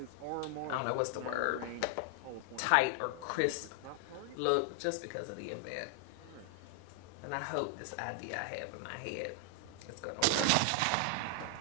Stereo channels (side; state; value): both; different; correlation 0.00